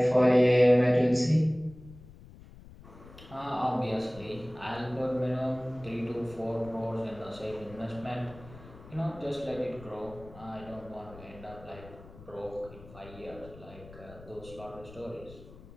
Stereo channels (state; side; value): noise; left; rumble, 19 dB below the sound